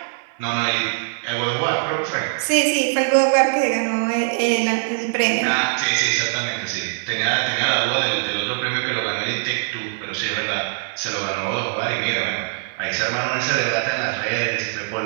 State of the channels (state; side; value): silent; left; digital silence